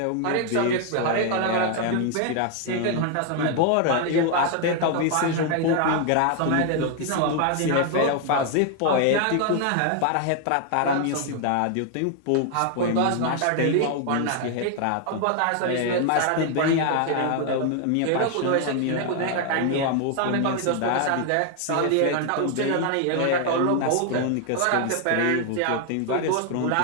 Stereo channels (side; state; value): both; different; correlation 0.00